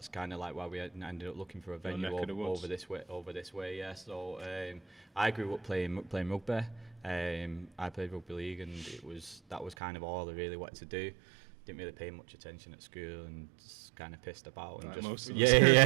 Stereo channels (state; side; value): drops out; left; at 9.8 s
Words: kind of like why we ended up looking for a venue over this way. Yeah. So I grew up playing rugby. I played rugby league, and that was kind of all I really wanted to do. Didn't really pay much attention at school, and just kind of pissed about, and